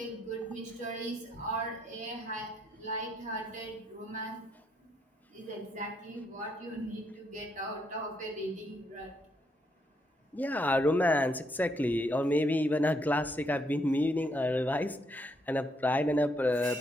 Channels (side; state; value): both; normal; correlation 0.75